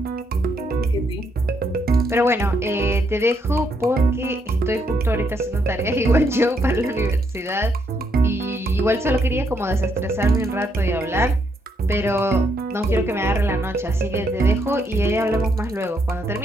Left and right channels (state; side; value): normal; both; correlation 0.75